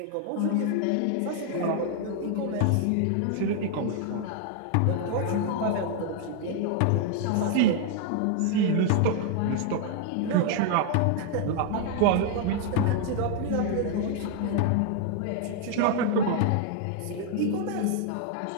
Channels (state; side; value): different; both; correlation 0.00